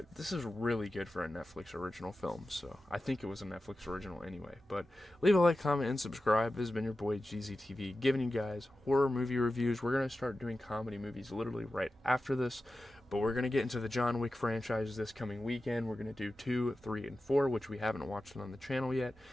this is really good for a Netflix original film, so I think it was a Netflix original anyway. But leave a like, comment, and subscribe. This has been your boy GZTV, giving you guys horror movie reviews. We're going to start doing comedy movies literally right after this, but we're going to get into the John Wick franchise this coming weekend. We're going to do 2, 3, and 4, which we haven't watched on the channel yet,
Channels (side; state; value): both; normal; correlation 0.93